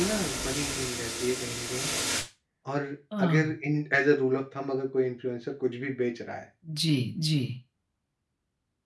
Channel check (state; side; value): identical; both; correlation 1.00